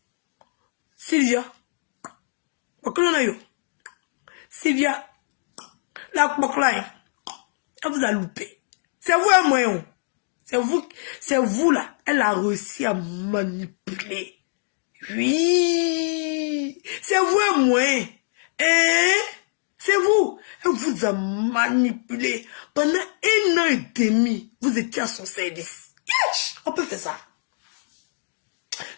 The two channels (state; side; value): silent; right; digital silence